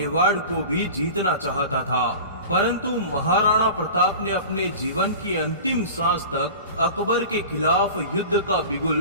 को भी जीतना चाहता था, परंतु महाराणा प्रताप ने अपने जीवन की अंतिम सांस तक अकबर के खिलाफ युद्ध का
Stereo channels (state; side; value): inverted; both; correlation -0.36